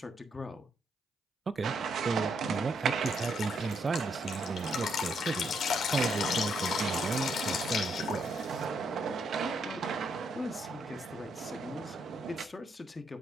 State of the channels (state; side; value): normal; both; correlation 0.75